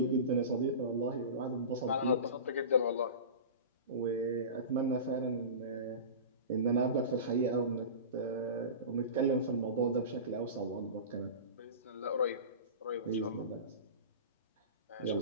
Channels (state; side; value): inverted; both; correlation -0.30